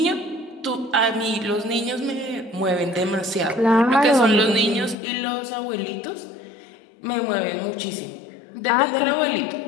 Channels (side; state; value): right; drops out; at 5.0 s